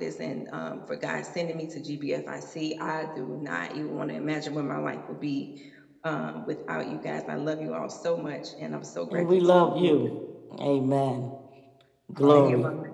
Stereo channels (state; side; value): identical; both; correlation 1.00